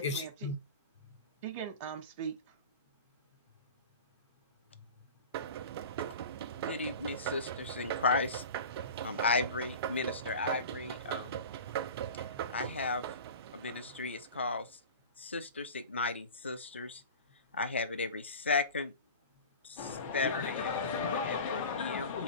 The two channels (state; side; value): inverted; both; correlation -0.34